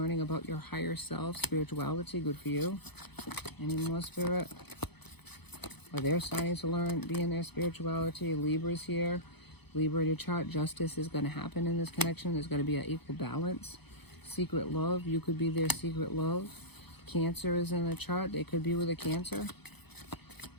about your higher self. Spirituality, good for you. Any more, Spirit? Or they're starting to learn, be in their spirituality. Libra's here. Libra in your chart. Justice is going to happen in this connection. There's going to be an equal balance. Secret love. You could be their secret love. Cancer is in the chart. They could be with a Cancer.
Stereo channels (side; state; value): right; late; 0.98 ms